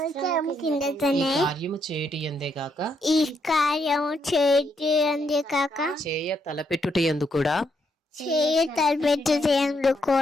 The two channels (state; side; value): normal; both; correlation 0.76